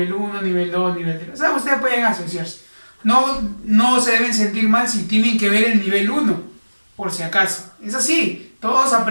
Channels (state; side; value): inverted; both; correlation -1.00